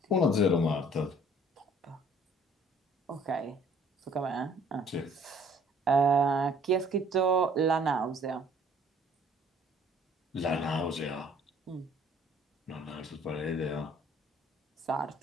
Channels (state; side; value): normal; both; correlation 0.57